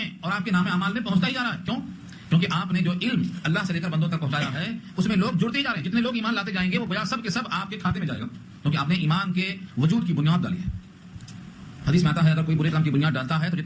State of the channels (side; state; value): both; identical; correlation 1.00